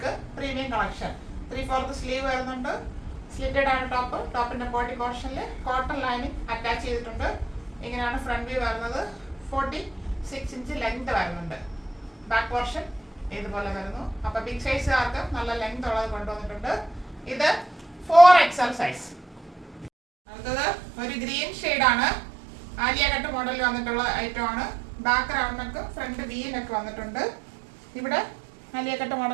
premium collection. 3/4 sleeve വരുന്നുണ്ട്. സ്ലിറ്റഡ് ആണ് ടോപ്പ്. ടോപ്പിന്റെ ബോഡി പോർഷനിൽ കോട്ടൺ ലൈനിങ് അറ്റാച്ച് ചെയ്തിട്ടുണ്ട്. ഇങ്ങനെയാണ് ഫ്രണ്ട് വ്യൂ വരുന്നത്. 46 ഇഞ്ച് ലെങ്ത് വരുന്നുണ്ട്. ബാക്ക് പോർഷൻ ഇതുപോലെ വരുന്നു. അപ്പൊ ബിഗ് സൈസുകാർക്ക് നല്ല ലെങ്ത് ഉള്ളത് കൊണ്ടുവന്നിട്ടുണ്ട്. ഇത് 4XL സൈസ്. അടുത്തത് ഒരു ഗ്രീൻ ഷെയ്ഡാണ്. ആലിയ കട്ട് മോഡലിൽ വന്നിട്ടുള്ള ഐറ്റം ആണ്. Back round neck, front V neck വന്നിട്ടുണ്ട്. ഇവിടെ ആലിയ കട്ട്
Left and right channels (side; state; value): left; drops out; at 19.9 s